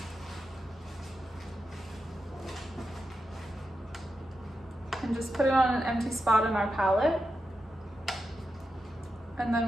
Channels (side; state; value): both; normal; correlation 0.89